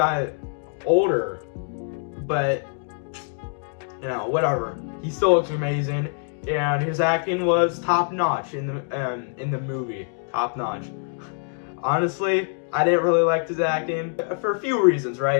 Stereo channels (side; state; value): right; silent; 62 dB below the other